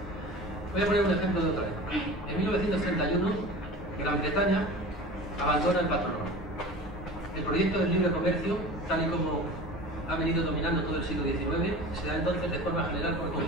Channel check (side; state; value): both; normal; correlation 0.37